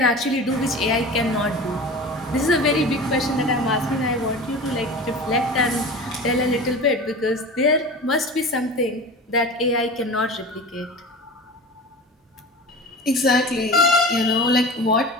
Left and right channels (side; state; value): both; normal; correlation 0.34